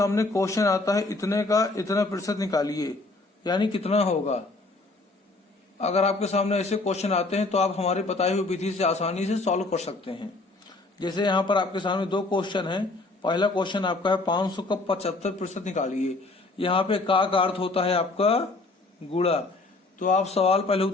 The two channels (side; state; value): right; quieter; 3.3 dB